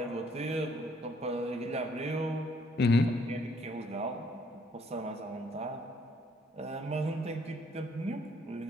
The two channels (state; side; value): normal; both; correlation 0.65